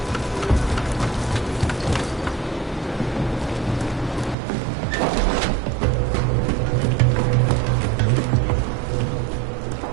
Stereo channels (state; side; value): drops out; left; at 4.4 s